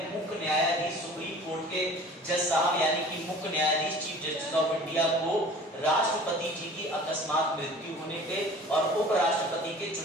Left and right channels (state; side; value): normal; both; correlation 0.45